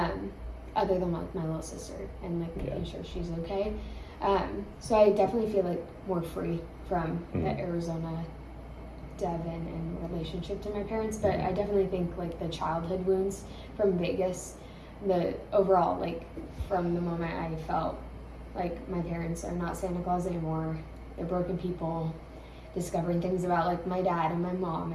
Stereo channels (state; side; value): identical; both; correlation 1.00